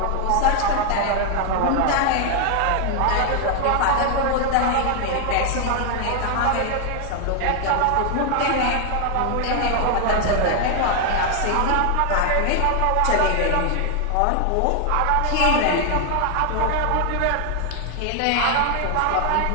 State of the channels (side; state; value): both; different; correlation 0.00